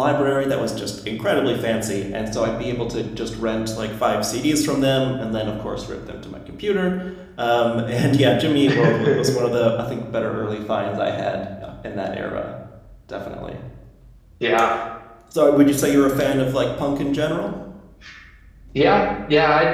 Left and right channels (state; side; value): identical; both; correlation 1.00